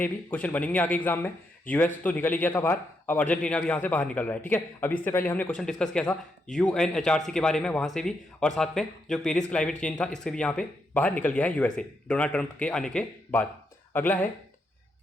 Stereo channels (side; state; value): both; normal; correlation 0.80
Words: ये भी, क्वेश्चन बनेंगे आगे एग्जाम में। US तो निकल ही गया था बाहर, अब अर्जेंटीना भी यहाँ से बाहर निकल रहा है, ठीक है। अब इससे पहले हमने क्वेश्चन डिस्कस किया था UNHRC के बारे में, वहाँ से भी, और साथ में जो पेरिस क्लाइमेट चेंज था, इससे भी यहाँ पे बाहर निकल गया है USA डोनाल्ड ट्रंप के आने के बाद। अगला है,